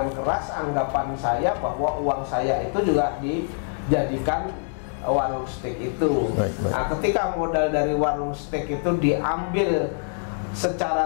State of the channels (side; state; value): right; silent; 62 dB below the other